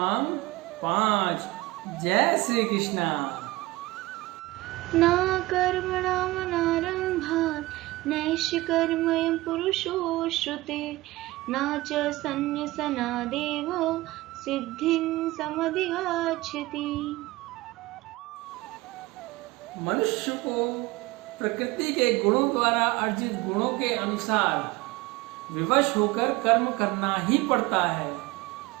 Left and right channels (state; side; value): quieter; left; 19.8 dB